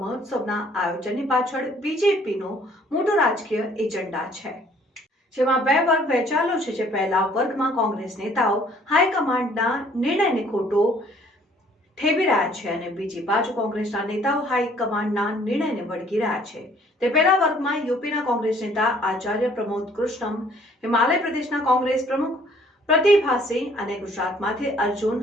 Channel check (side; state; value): both; normal; correlation 0.59